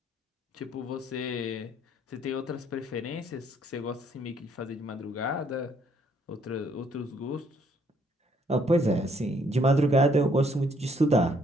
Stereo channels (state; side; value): normal; both; correlation 0.67